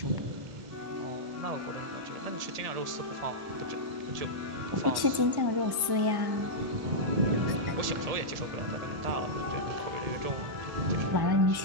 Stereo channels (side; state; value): left; late; 1.1 ms